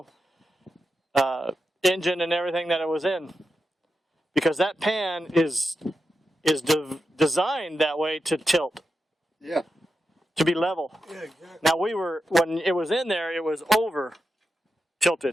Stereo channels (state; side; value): normal; both; correlation 0.89